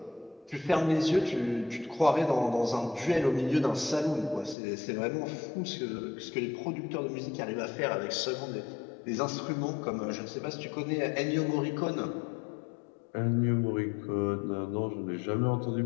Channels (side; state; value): right; drops out; at 4.5 s